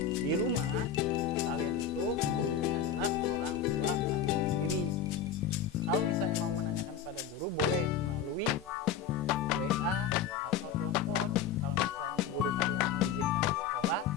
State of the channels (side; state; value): right; quieter; 7.6 dB